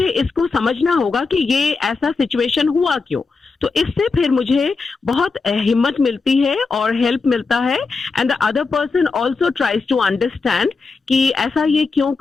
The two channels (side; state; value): right; quieter; 4.3 dB